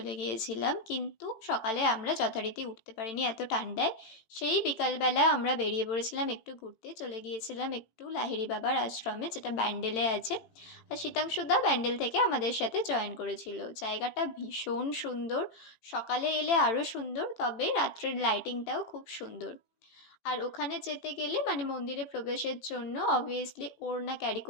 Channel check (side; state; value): right; late; 18 ms